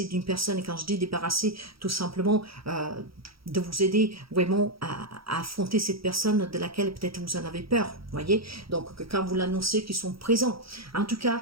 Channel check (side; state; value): left; late; 0.75 ms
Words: d'une personne? Et quand je dis débarrasser, tout simplement de vous aider vraiment à affronter cette personne de laquelle peut-être vous en avez peur, voyez. Donc quand vous l'annoncez qu'ils sont présents. En tout cas,